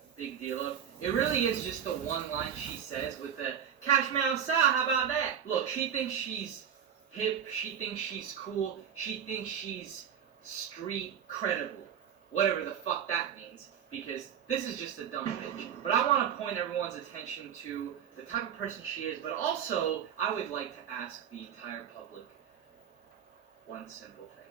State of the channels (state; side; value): quieter; left; 8.7 dB